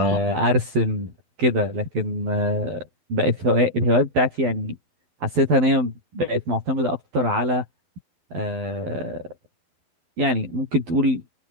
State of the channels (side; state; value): left; late; 12 ms